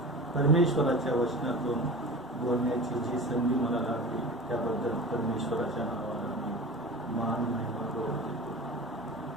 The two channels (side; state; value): both; normal; correlation 0.34